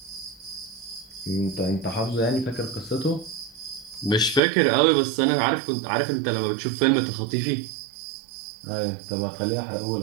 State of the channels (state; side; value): drops out; left; at 4.4 s